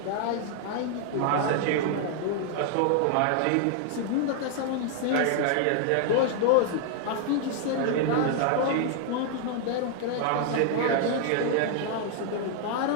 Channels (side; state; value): both; different; correlation 0.00